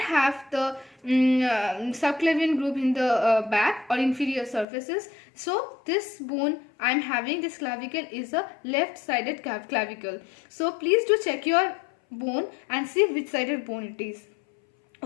have the subclavian groove in the back or inferior surfaces. So this bone I am having, this clavicle, is a left sided clavicle. So please do check your bone and see which sided bone it is.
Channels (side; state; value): right; drops out; at 4.7 s